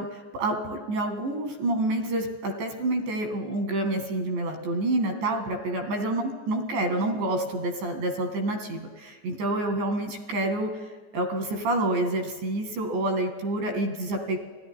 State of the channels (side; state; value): left; late; 14 ms